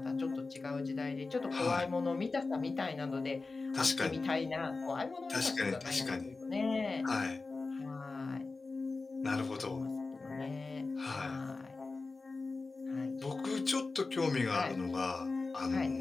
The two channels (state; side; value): quieter; right; 3.8 dB